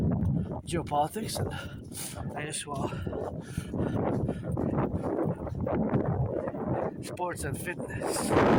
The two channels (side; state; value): both; identical; correlation 1.00